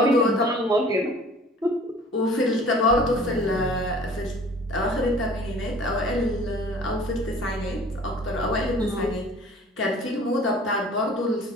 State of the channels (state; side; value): normal; both; correlation 0.49